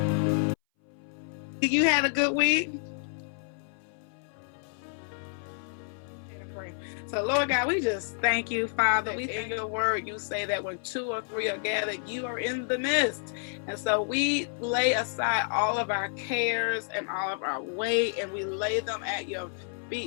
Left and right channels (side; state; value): right; silent; 58 dB below the other